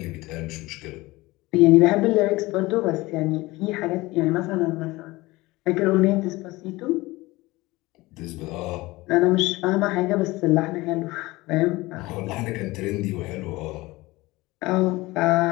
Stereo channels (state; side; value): quieter; right; 20.6 dB